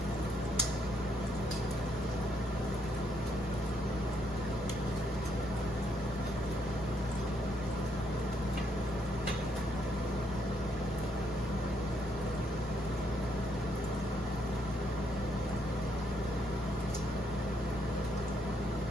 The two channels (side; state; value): both; normal; correlation 0.74